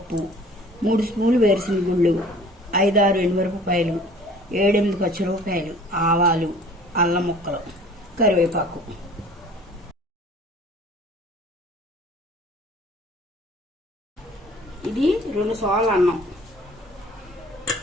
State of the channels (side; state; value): both; normal; correlation 0.49